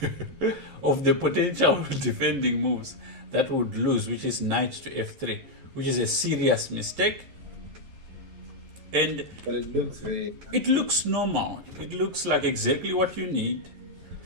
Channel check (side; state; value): left; late; 11 ms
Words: of the potential defending moves that would lose, which is knight to f3, which is a serious mistake. And but it looks normal. It looks like exactly what you need.